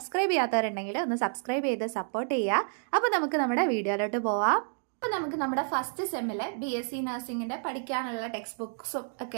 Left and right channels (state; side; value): silent; left; 58 dB below the other